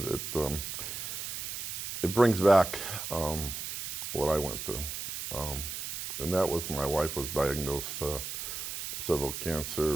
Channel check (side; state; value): right; noise; hiss, 5 dB below the sound